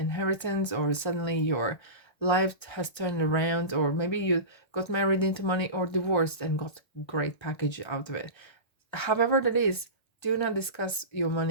or suddenly your life has turned around, or maybe you got married into money or divorced and got great package out of it. However that is, do not discuss your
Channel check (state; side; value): late; right; 1.3 ms